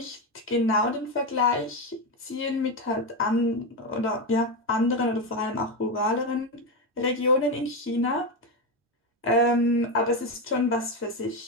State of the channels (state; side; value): normal; both; correlation 0.12